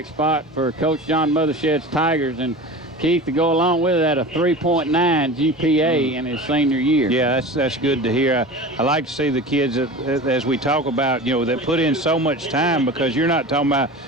spot for Coach John Mothershed's Tigers. And Keith, to go along with that, a 3.9 GPA in his senior year. Yeah, that's good to hear. I like to see the kids that, as we talk about, that put in so much time, because you're not talking about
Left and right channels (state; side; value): normal; both; correlation 0.33